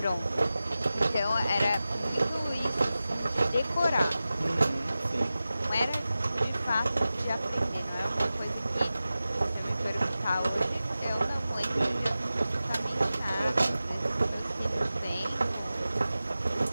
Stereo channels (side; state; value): both; inverted; correlation -0.95